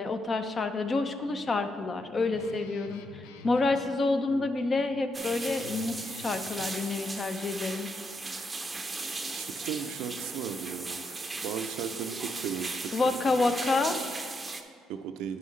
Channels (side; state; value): both; normal; correlation 0.81